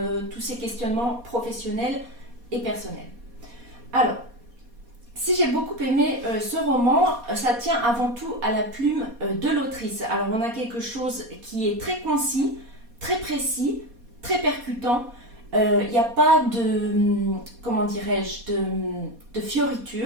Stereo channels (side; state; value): left; late; 4.2 ms